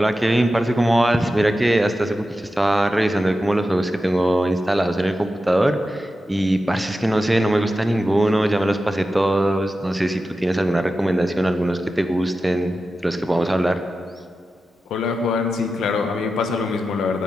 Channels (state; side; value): normal; both; correlation 0.92